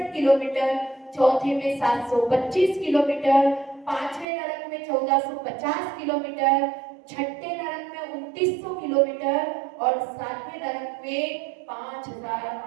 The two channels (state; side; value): drops out; left; at 4.2 s